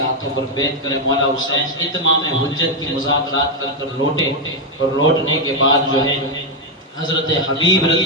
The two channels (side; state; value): both; normal; correlation 0.02